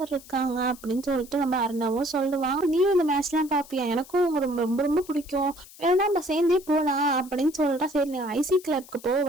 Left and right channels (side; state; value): left; noise; hiss, 20 dB below the sound